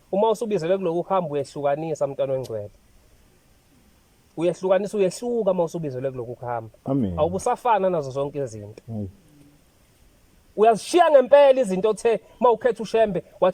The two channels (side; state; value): both; identical; correlation 1.00